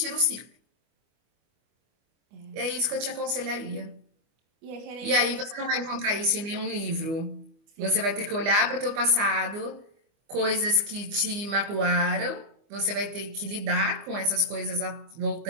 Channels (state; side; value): late; left; 25 ms